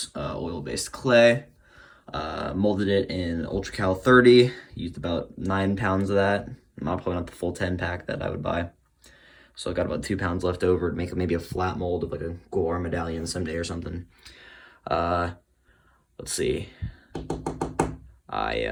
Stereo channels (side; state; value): both; identical; correlation 1.00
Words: oil-based clay. Molded it in Ultra Cal 30. Used about 9 pounds of that. Probably not the full 10 pack that I would buy. So I got about 2 pounds left over to make maybe a flat mold of like a Gore medallion someday or something. Let's see. I